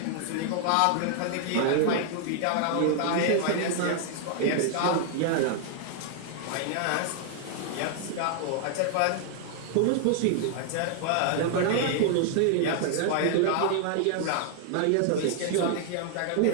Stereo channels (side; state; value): both; different; correlation 0.00